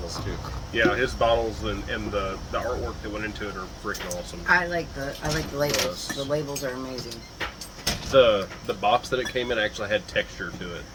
too. Yeah, his bottles and the artwork that went into it are freaking awesome. I like the labels. Yes. The labels are amazing. The box that it came in actually had texture to it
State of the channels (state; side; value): identical; both; correlation 1.00